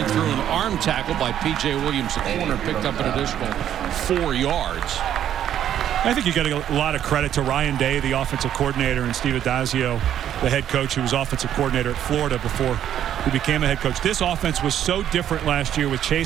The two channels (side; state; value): left; quieter; 10.5 dB